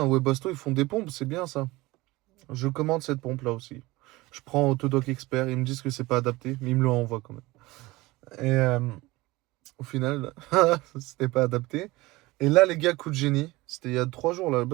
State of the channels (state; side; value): quieter; left; 20.6 dB